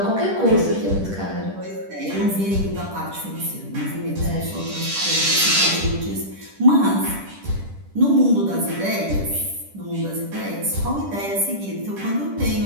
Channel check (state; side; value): late; left; 10 ms